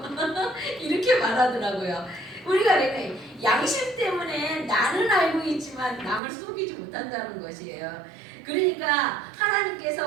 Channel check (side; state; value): left; drops out; at 6.2 s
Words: 이렇게 말하더라고요. 우리가 왜 양심 때문에 나는 알고 있지만 남을 속이지 못한다는 것이에요. 그러니까